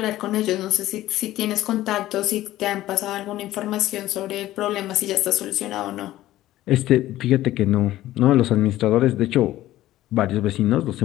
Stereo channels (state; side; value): quieter; right; 15.0 dB